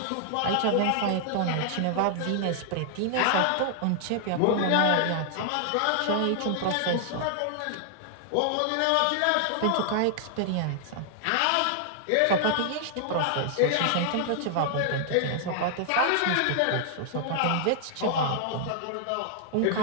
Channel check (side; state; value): both; different; correlation -0.01